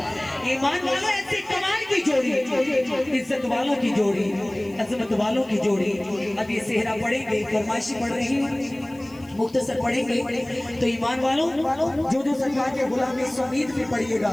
ईमान वालों ऐसी कमाल की जोड़ी, इज्जत वालों की जोड़ी, अजमत वालों की जोड़ी। अब ये सेहरा पढ़ेंगे, फरमाइशी पढ़ रही मुख्तसर पढ़ेंगे तो ईमान वालों जो जो सरकार के गुलाम इस उम्मीद में पढ़िएगा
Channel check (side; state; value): left; noise; hiss, 27 dB below the sound